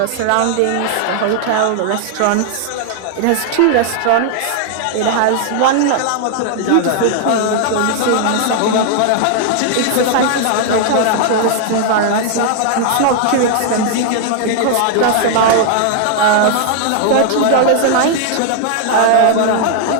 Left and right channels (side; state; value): both; different; correlation 0.00